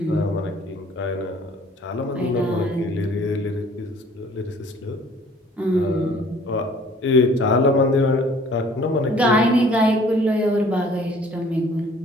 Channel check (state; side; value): normal; both; correlation 0.54